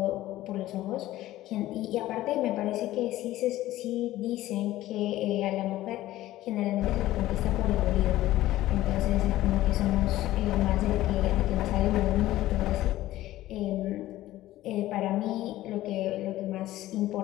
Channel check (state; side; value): quieter; right; 15.4 dB